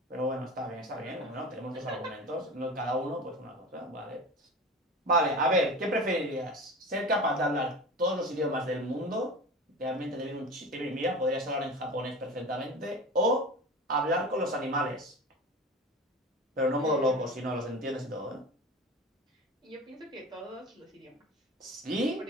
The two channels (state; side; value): normal; both; correlation 0.32